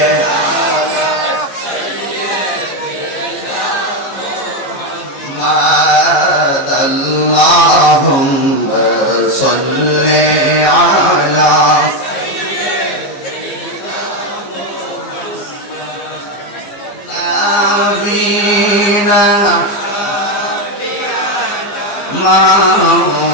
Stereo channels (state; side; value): late; right; 14 ms